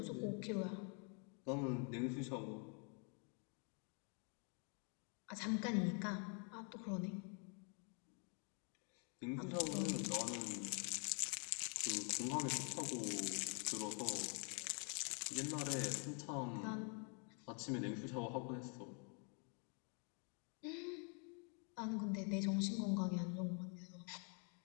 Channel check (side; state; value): right; quieter; 38.2 dB